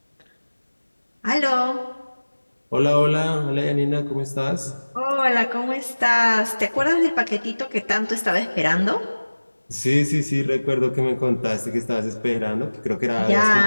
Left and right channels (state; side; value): inverted; both; correlation -1.00